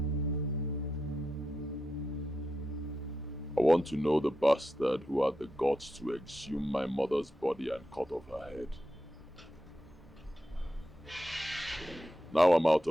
I want to know the bastard who had the guts to exhume my mother's body and cut off her head. Now I'm out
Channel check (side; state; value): both; normal; correlation 0.87